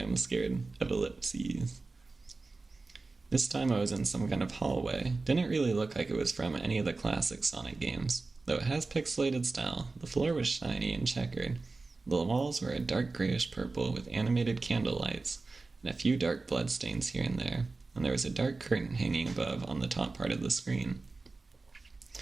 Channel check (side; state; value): left; quieter; 3.6 dB